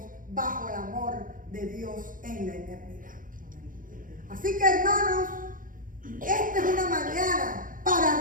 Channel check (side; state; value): left; late; 0.39 ms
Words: bajo el amor de Dios en la eternidad. Así que, hermanos, esta es una mañana